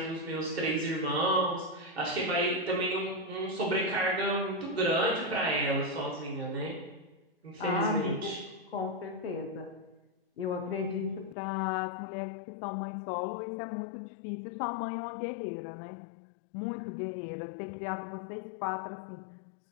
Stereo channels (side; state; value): right; drops out; at 11.4 s